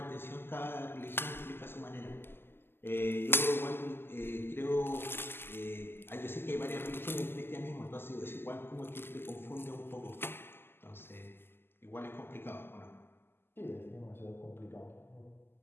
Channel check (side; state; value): right; late; 0.11 ms